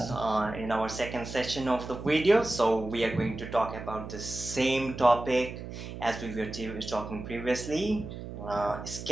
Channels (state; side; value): noise; right; hum, 10 dB below the sound